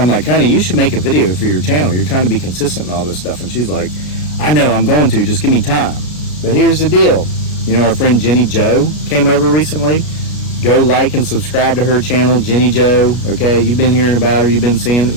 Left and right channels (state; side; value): late; right; 33 ms